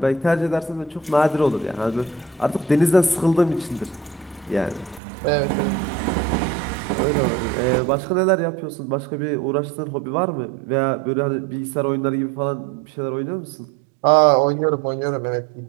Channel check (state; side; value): drops out; left; at 5.0 s